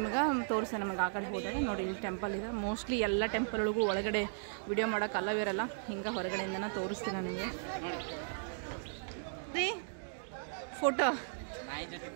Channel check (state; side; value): silent; left; digital silence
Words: ತೋರಿಸ್ತೇನೆ ನಮಗೆ ಆ ಕಡೆ ಹೋದಾಗ. ನೋಡಿ ಇಲ್ಲಿ ಟೆಂಪಲ್ ಇದೆ. ಮೋಸ್ಟ್ಲಿ ಎಲ್ಲ ಟೆಂಪಲ್ ಒಳಗೂ ಒಳಗಡೆ ವಿಡಿಯೋ ಮಾಡೋಕೆ ಅಲ್ಲವಿರಲ್ಲ, ಹಿಂಗೆ ಹೊರಗಡೆಯಿಂದನೇ ತೋರಿಸ್ತೀನಿ ನಾನು ನಿಮಗೆ. ರೀ ಫೋಟೋ